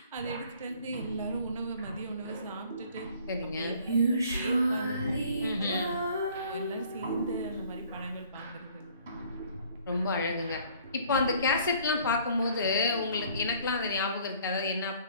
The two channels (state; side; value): inverted; both; correlation -0.56